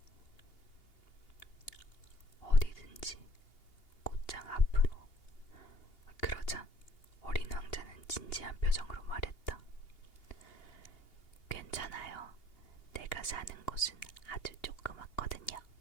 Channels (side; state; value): right; late; 2.8 ms